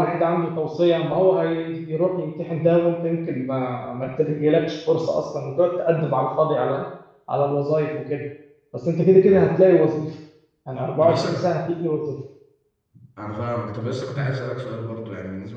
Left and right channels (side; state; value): both; identical; correlation 1.00